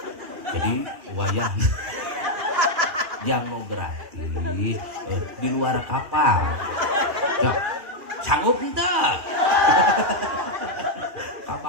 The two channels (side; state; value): left; late; 3.0 ms